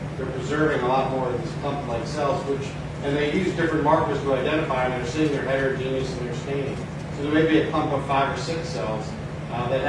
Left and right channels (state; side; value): identical; both; correlation 1.00